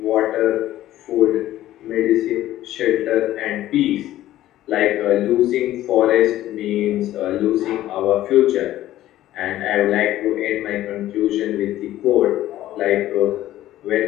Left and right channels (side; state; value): right; quieter; 14.1 dB